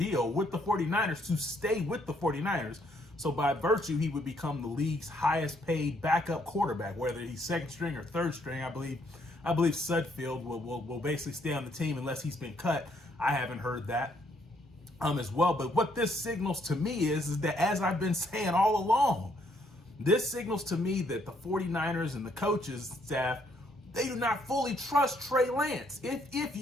with the 49ers to stay with the 49ers. So by virtue, he would become the league's highest paid backup quarterback, whether he's second string or third string. I believe Sudfeld will basically stay on the team unless he's been cut. I haven't heard that as well. But what this signals to me is that, as I've been saying all along, this signals to me that the 49ers and the coaches staff, they do not fully trust Trey Lance. If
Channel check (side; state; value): both; normal; correlation 0.70